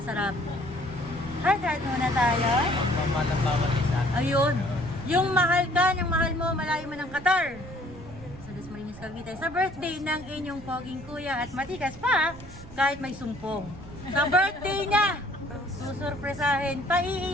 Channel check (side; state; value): right; noise; rumble, 16 dB below the sound